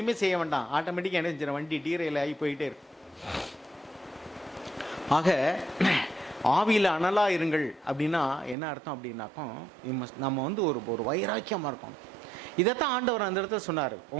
செய்ய வேண்டாம், ஆட்டோமேட்டிக்காக என்ன செஞ்சிடும், வண்டி டீரையில் ஆகி போயிட்டே இருக்கும். ஆக ஆவியில் அனலாக இருங்கள் அப்படின்னா என்ன அர்த்தம் அப்படின்னாக்கும், நம்ம வந்து ஒரு வைராக்கியமாக இருக்கணும். இதைத்தான் ஆண்டவர் அந்த இடத்துல சொன்னார்.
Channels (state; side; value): drops out; left; at 8.6 s